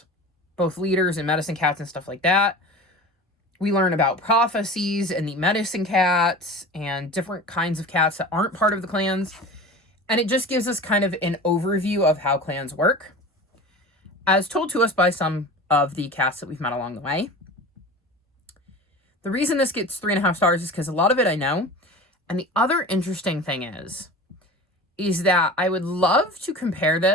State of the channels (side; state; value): both; normal; correlation 0.35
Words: both leaders and medicine cats and stuff like that. We learn about prophecies and the medicine cats and different kinds of cats that aren't part of the clans. And it just gives us kind of an overview of how clans work, as told to us by some of the cats that we've met along the way. The reason this gets 3.5 stars is because a lot of it I know. And the other interesting thing is that I would love to compare